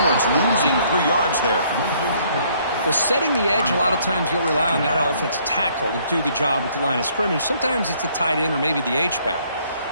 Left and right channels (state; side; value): inverted; both; correlation -0.64